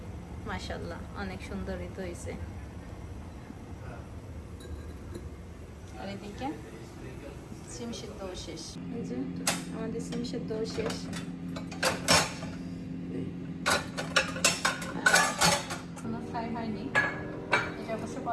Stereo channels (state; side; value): identical; both; correlation 1.00